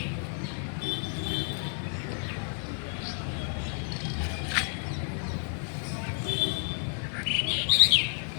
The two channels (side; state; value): right; silent; 57 dB below the other